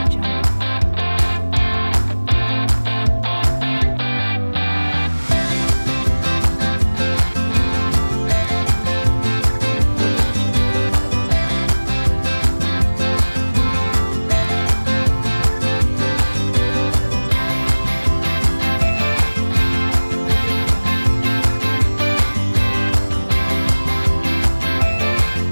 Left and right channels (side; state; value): both; inverted; correlation -1.00